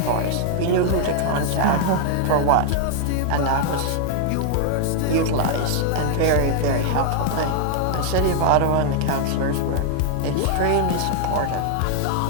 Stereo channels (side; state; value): both; different; correlation 0.00